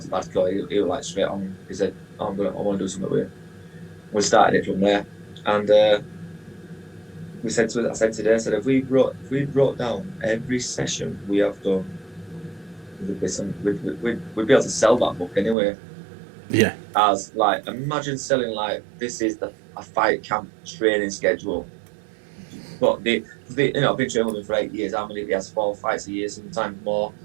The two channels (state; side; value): drops out; left; at 15.6 s